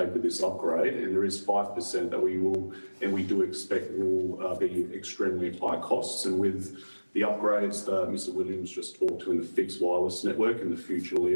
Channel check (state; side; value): inverted; both; correlation -1.00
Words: with this upgrade. And there is 5% that we will, and we do expect will be extremely high costs. And with the upgrades that Mr. Williams just talked to in the fixed wireless network and the future